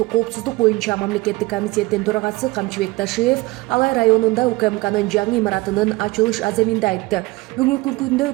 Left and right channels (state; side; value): quieter; left; 21.7 dB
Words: коопсуздук боюнча мамлекеттик комитеттин төрагасы Камчыбек Ташиев Алай районунда УКМКнын жаңы имаратынын ачылыш аземинде айтты. Бүгүнкү күндө